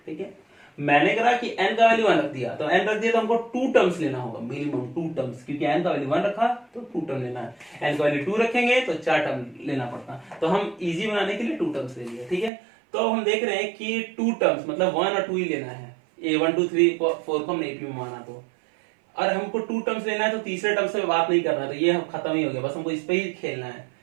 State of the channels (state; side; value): drops out; left; at 12.5 s